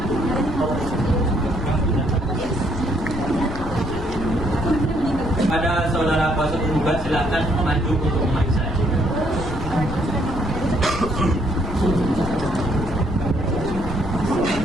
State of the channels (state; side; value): noise; left; rumble, 9 dB below the sound